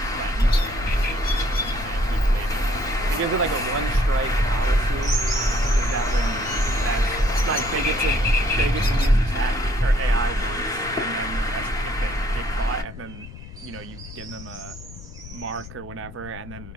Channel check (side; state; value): left; noise; rumble, 15 dB below the sound